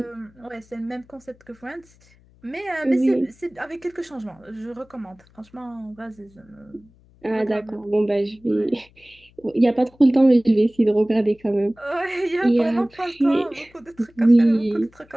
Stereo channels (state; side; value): noise; left; hum, 29 dB below the sound